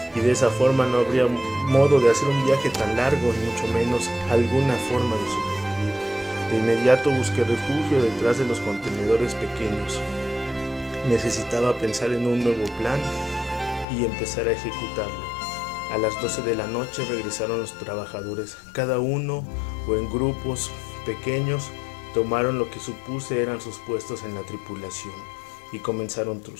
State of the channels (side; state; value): right; drops out; at 13.9 s